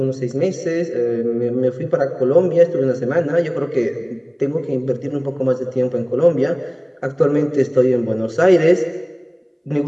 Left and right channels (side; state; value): both; identical; correlation 1.00